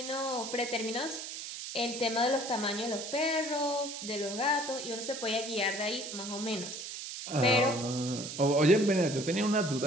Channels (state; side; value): noise; right; hiss, 8 dB below the sound